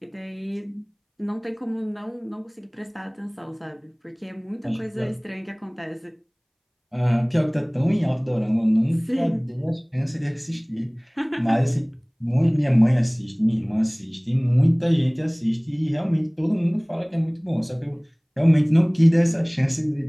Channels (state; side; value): identical; both; correlation 1.00